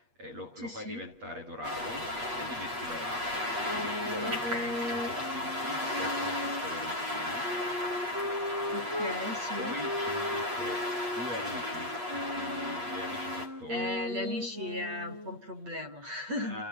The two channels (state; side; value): late; left; 8.3 ms